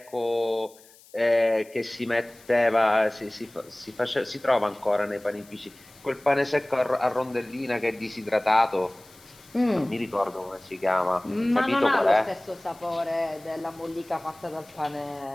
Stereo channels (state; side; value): noise; left; hiss, 25 dB below the sound